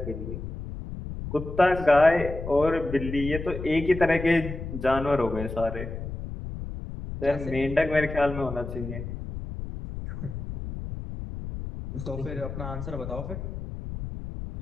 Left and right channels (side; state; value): left; noise; rumble, 8 dB below the sound